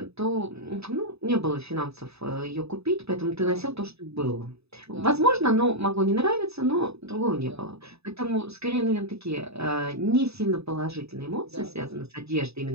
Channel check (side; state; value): left; late; 0.79 ms